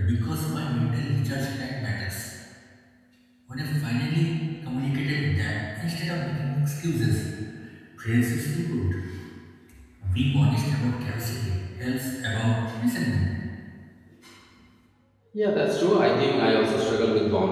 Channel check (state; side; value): identical; both; correlation 1.00